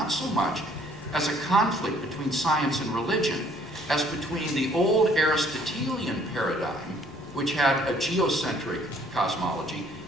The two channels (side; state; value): both; normal; correlation 0.61